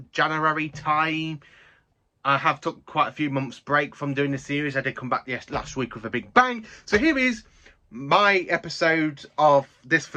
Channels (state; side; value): identical; both; correlation 1.00